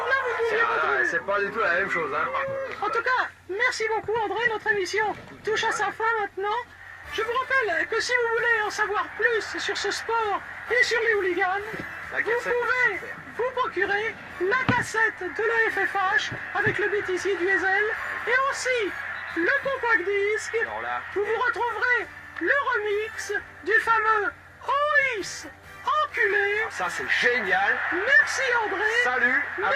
là, vous ne pouviez pas trouver. C'est pas du tout la même chose, hein. En tout cas, merci beaucoup André, notre émission touche à sa fin maintenant. Je vous rappelle que si vous voulez en savoir plus sur ce sport et sur les hooligans, vous pouvez vous procurer la cassette de la FFH avec le bêtisier du Hazel et aussi le compact disque. Où vous retrouverez le remix du fameux OIS enculé. Ça c'est génial. Merci André. Salut.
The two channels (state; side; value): identical; both; correlation 1.00